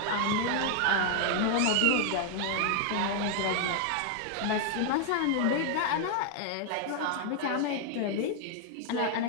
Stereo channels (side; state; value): both; different; correlation 0.00